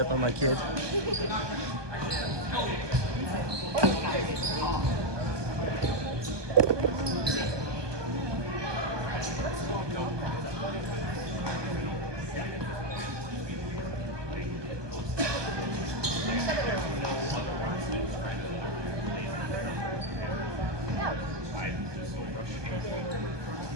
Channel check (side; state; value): left; late; 1.2 ms